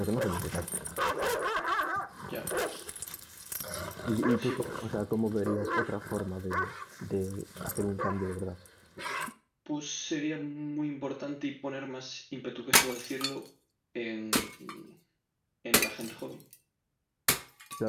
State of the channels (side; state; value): both; identical; correlation 1.00